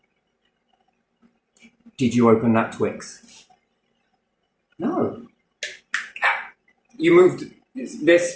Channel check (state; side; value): identical; both; correlation 1.00